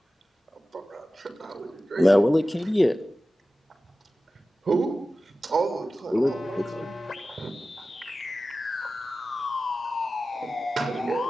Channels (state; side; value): normal; both; correlation 0.95